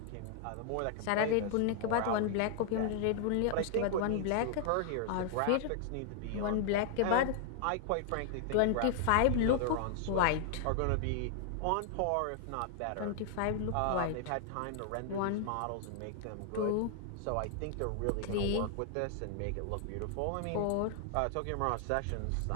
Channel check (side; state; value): both; different; correlation 0.00